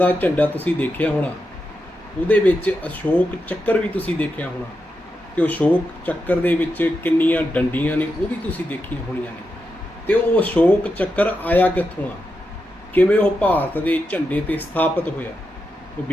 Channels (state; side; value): normal; both; correlation 0.87